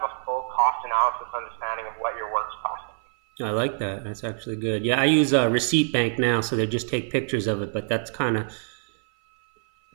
a full cost analysis understanding of what your work's costing. I like that. That's actually good. Yeah, I use a receipt bank now, so they just take pictures of it, but that's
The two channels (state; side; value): silent; left; 56 dB below the other